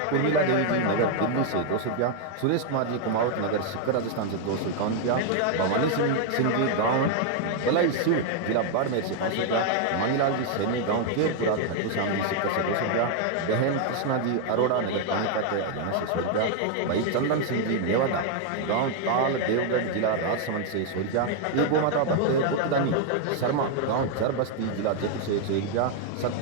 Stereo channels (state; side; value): different; both; correlation 0.00